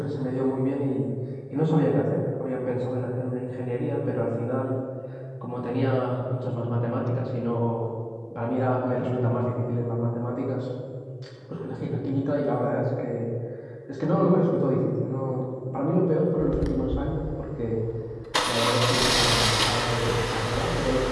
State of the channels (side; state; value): both; identical; correlation 1.00